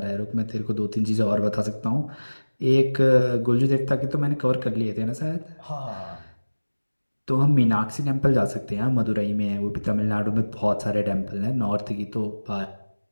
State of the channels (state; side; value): inverted; both; correlation -1.00